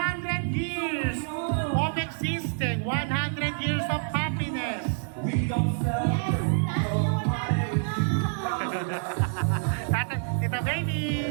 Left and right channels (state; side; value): silent; left; digital silence